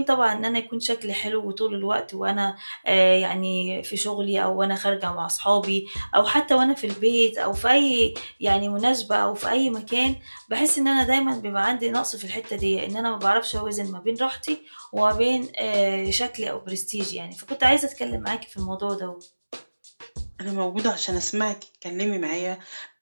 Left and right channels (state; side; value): inverted; both; correlation -1.00